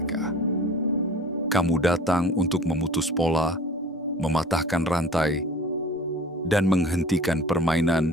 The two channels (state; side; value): normal; both; correlation 0.43